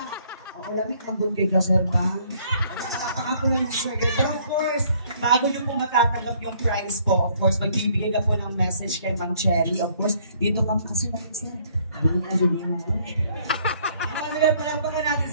Ako lamit, mambun kayo ka sir ba? Napaka po lang sir. Pero of course, bago nyo po matatanggap yung prize po, of course, magbibigay ka po ng message kay Ma'am Cherry. Of course, dito ka kasi natin sir. Ano nga sabihin mo? Ano yan, palampakan natin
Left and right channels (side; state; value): both; inverted; correlation -0.63